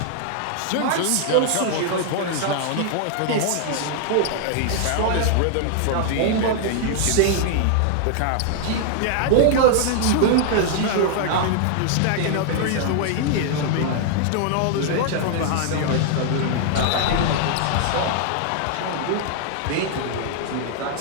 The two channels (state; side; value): different; both; correlation 0.00